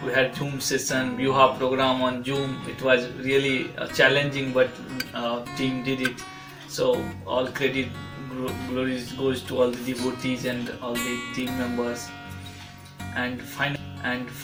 we had Zoom session, Vyuha program on Zoom. It was really challenging, but team did it. So all credit glories goes to all the devotees and all the team members. And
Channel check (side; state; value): both; identical; correlation 1.00